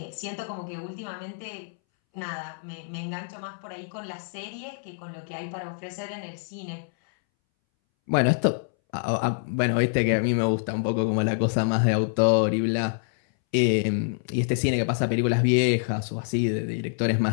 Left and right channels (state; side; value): silent; right; 61 dB below the other